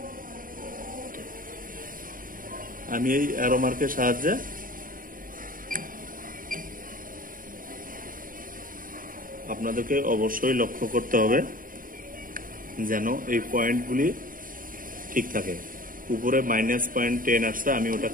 আমি এই অ্যারো মার্কের সাহায্যে আপনাদেরকে অবশ্যই লক্ষ্য করতে হবে যেন এই পয়েন্টগুলি ঠিক থাকে। উপরে -.10 আসছে, আমি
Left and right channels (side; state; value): left; late; 0.40 ms